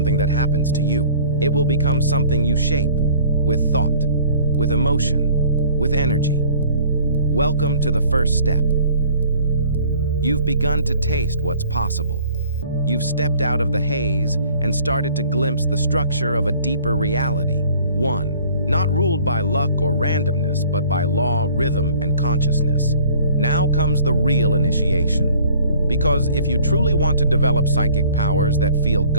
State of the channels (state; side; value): inverted; both; correlation -0.52